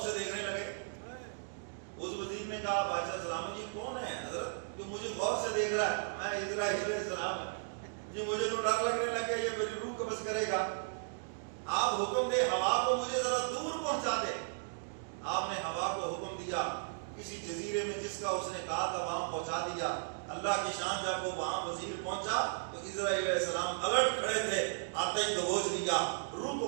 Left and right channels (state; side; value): silent; left; digital silence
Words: سے دیکھنے لگے۔ اس وزیر نے کہا بادشاہ سلام جی کون ہے حضرت جو مجھے غور سے دیکھ رہا ہے؟ میں اسرائیل علیہ السلام جی، مجھے تو ڈر لگنے لگا یہ میری روح قبض کرے گا، آپ حکم دے ہوا کو مجھے ذرا دور پہنچا دے۔ آپ نے ہوا کو حکم دیا، کسی جزیرے میں جس کا اس نے کہا تھا وہاں پہنچا دیا۔ اللہ کی شان، جب وہ وہاں وزیر پہنچا تو اسرائیل علیہ السلام الرٹ کھڑے تھے، آتے ہی دبوچ لیا، روح کو